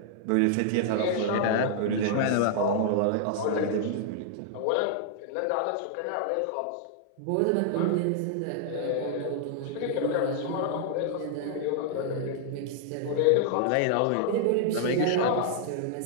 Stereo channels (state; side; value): different; both; correlation -0.01